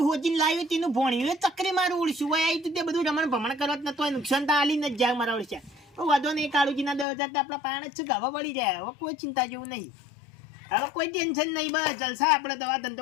હોજીને લાવ્યું તેનું ભણ્યું ચક્રી મારું ઉડશું હોય આવી તે બધું રમણ ભમણ કરવા જ નતો નુકસાન તો આલી ને જ જાય મારા ઉડશે. વાંધો નહીં કાળુજીના 10,000 તો આપણા પાણ જ છે ગાવા પડી જાય. હવે કોઈ ચિંતા જેવું નહીં, હવે કોઈ ટેન્શન નહીં, બસ જલસા આપણે દવા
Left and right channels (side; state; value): right; drops out; at 7.1 s